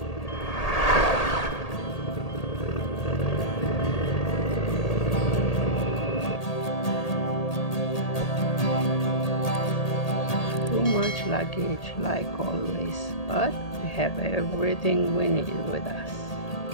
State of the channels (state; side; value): late; right; 1.8 ms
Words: Too much luggage like always, but we have everything we need with us.